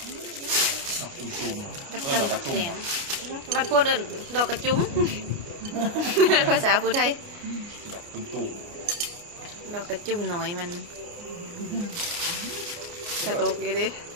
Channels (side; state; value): left; late; 29 ms